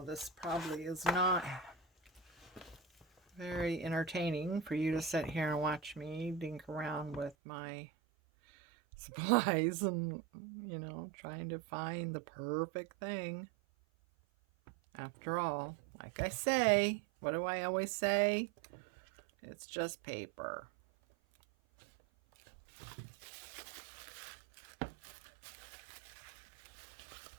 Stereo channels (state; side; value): drops out; left; at 7.4 s